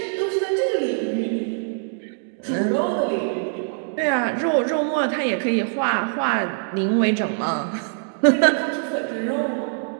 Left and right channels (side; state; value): left; silent; digital silence